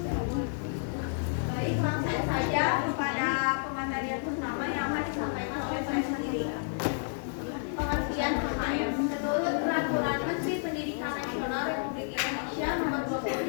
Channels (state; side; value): silent; right; digital silence